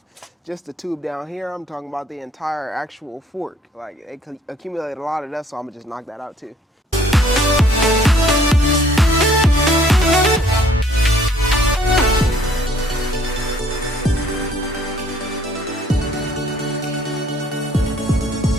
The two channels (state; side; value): normal; both; correlation 0.61